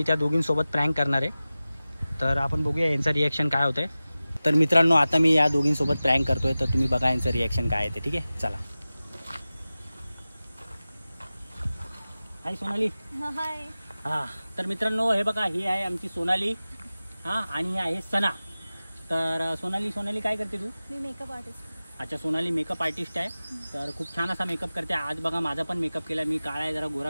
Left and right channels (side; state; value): both; inverted; correlation -0.96